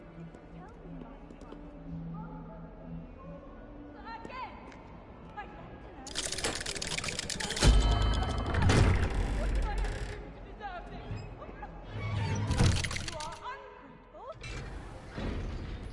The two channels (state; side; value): identical; both; correlation 1.00